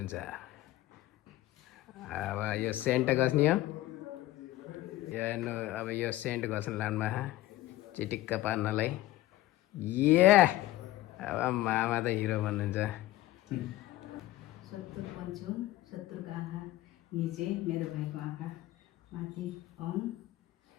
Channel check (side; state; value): right; quieter; 16.0 dB